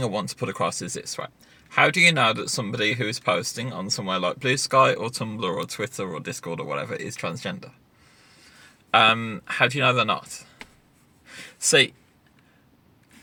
I want to put across is this, right? How do you know that somebody who is posting on somewhere like Blue Sky or Tumblr or Twitter or Discord or whatever is transgender? How do you know they're not? See,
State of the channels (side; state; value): both; identical; correlation 1.00